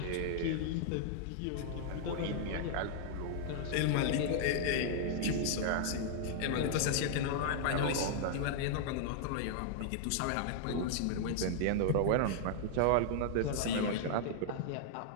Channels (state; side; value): different; both; correlation -0.01